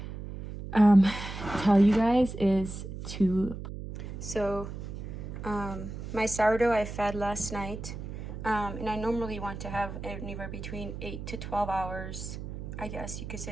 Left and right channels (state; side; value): noise; right; hum, 8 dB below the sound